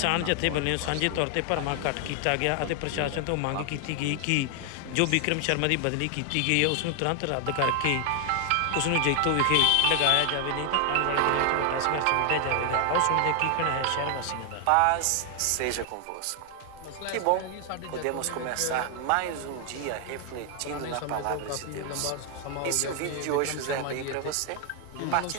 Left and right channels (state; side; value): different; both; correlation 0.00